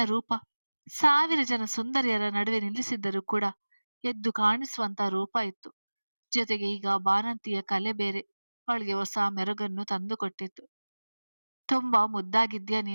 ರೂಪ 1000 ಜನ ಸುಂದರಿಯರ ನಡುವೆ ನಿಲ್ಲಿಸಿದ್ದರೂ ಕೂಡ ಎದ್ದು ಕಾಣಿಸುವಂತ ರೂಪ ಇತ್ತು. ಜೊತೆಗೆ ಈಗ ಬಾಣಂತಿಯ ಕಲೆ ಬೇರೆ ಅವಳಿಗೆ ಹೊಸ ಮೆರುಗನ್ನು ತಂದುಕೊಟ್ಟಿತ್ತು. ತುಂಬಾ ಮುದ್ದಾಗಿದ್ಯಾ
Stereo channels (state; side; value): inverted; both; correlation -1.00